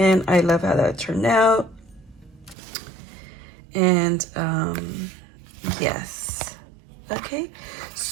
I love how that turned out. And yes, okay,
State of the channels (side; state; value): left; drops out; at 2.6 s